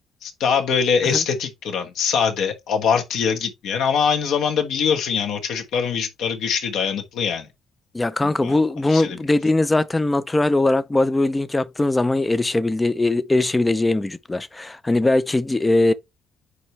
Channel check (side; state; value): right; quieter; 3.3 dB